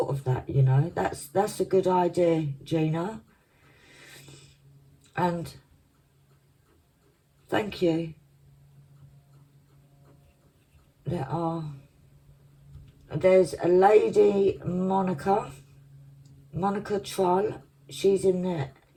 of that, you know. That's a good idea, Gina. And thank you. There's a lady, Monica Troll. She's in the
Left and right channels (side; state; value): both; identical; correlation 1.00